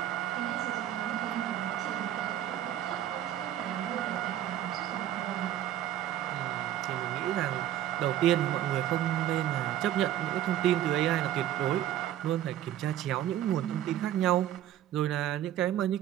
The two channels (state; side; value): quieter; left; 11.9 dB